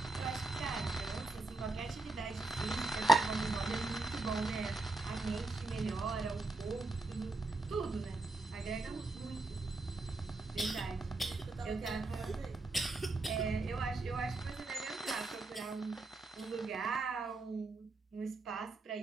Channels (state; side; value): quieter; left; 3.2 dB